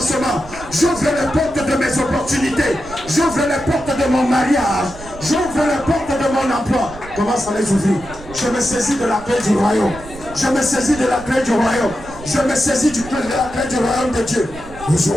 J'ouvre les portes de mes opportunités. J'ouvre les portes de mon mariage. J'ouvre les portes de mon emploi. Commence à les ouvrir. Je me saisis de la clé du royaume. Je me saisis de la clé du royaume. Je me saisis de la clé du royaume de Dieu. Et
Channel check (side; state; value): right; noise; rumble, 16 dB below the sound